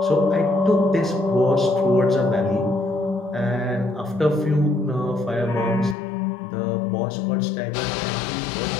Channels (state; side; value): drops out; right; at 6.0 s